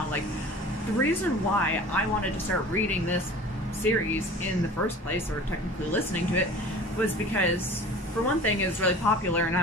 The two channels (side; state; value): both; normal; correlation 0.41